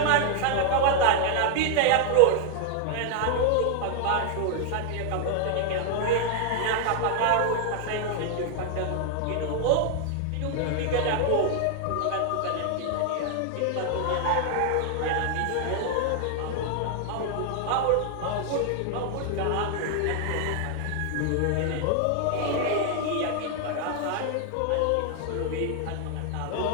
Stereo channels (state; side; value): different; both; correlation 0.00